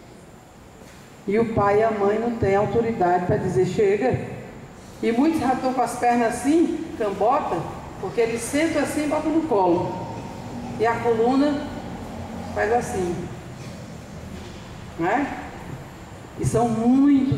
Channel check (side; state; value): both; identical; correlation 1.00